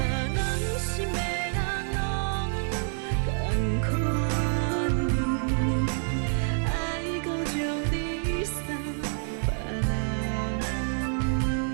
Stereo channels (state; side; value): silent; left; digital silence